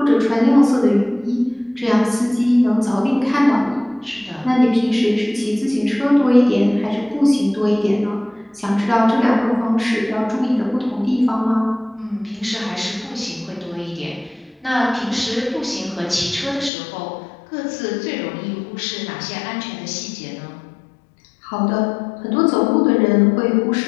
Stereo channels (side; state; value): right; drops out; at 16.7 s